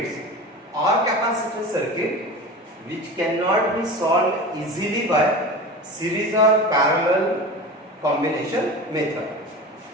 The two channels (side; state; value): both; normal; correlation 0.31